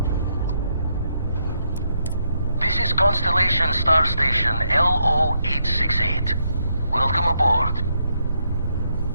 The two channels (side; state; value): both; inverted; correlation -0.78